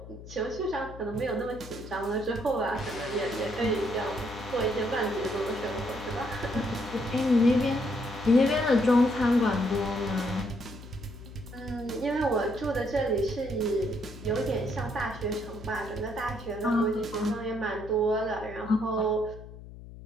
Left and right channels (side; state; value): left; noise; hum, 15 dB below the sound